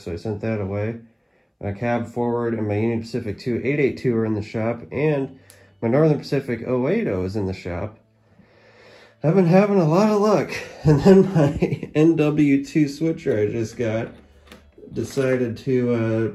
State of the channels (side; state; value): both; identical; correlation 1.00